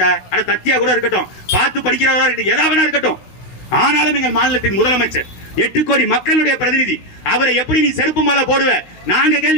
அட தத்தியா கூட இருக்கட்டும், பார்த்து படிக்கிறவரா இருக்கட்டும், எதாவது இருக்கட்டும், ஆனாலும் எங்கள் மாநிலத்தின் முதலமைச்சர் 8 கோடி மக்களுடைய பிரதிநிதி, அவரை எப்படி நீ செருப்பு மாலை போடுவ? நாங்க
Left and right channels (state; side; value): late; right; 16 ms